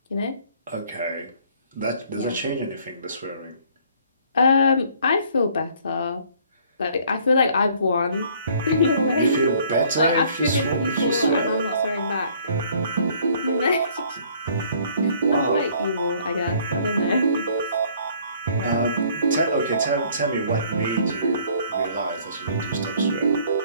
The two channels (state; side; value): inverted; both; correlation -0.59